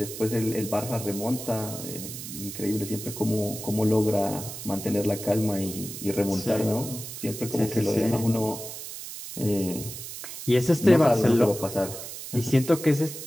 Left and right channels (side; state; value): right; noise; hiss, 10 dB below the sound